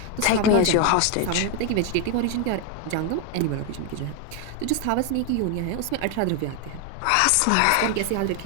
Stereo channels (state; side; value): different; both; correlation 0.01